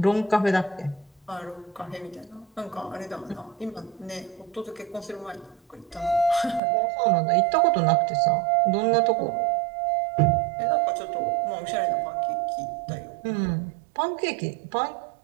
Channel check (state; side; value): drops out; left; at 6.6 s